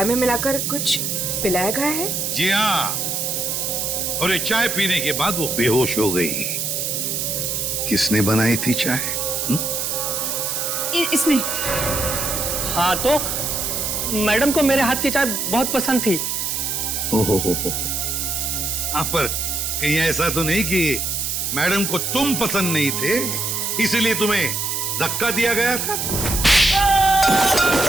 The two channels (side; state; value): right; noise; hiss, 1 dB below the sound